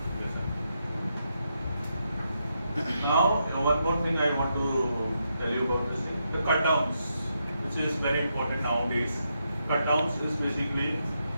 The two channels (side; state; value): both; inverted; correlation -0.82